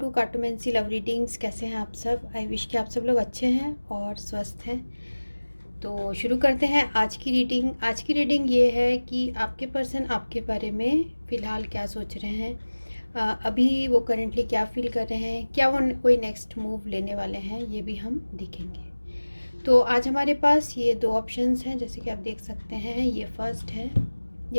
cartomancy love readings. कैसे हैं आप सब? आई विश कि आप सब लोग अच्छे हैं और स्वस्थ हैं। तो शुरू करते हैं आज की रीडिंग। आज की रीडिंग ये है कि आपके पर्सन आपके बारे में फ़िलहाल क्या सोच रहे हैं, अभी वो करेंटली क्या फील कर रहे हैं, क्या वो कोई नेक्स्ट मूव लेने वाले हैं, ये भी हम देखेंगे। तो आज हमारे पास ये दो ऑप्शंस हैं, जैसे कि आप देख सकते हैं। ये फर्स्ट है,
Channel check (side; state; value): both; inverted; correlation -1.00